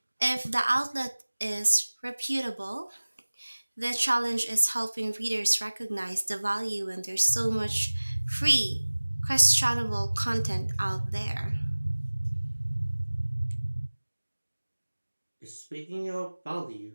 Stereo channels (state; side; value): inverted; both; correlation -1.00